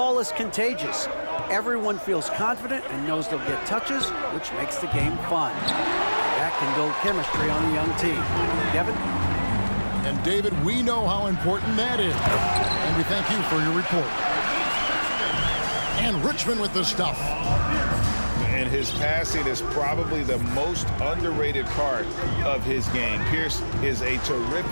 is contagious. Everyone feels confident and knows they'll get touches, which makes the game fun. That can build chemistry on a young team. Kevin? And David, we know how important that is. And we thank you for your report. And Richmond with the stuff. And his passing is probably the most underrated part of his game. Pierce is a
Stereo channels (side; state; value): both; inverted; correlation -1.00